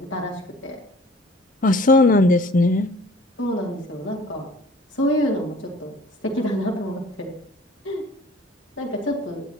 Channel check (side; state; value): both; normal; correlation 0.50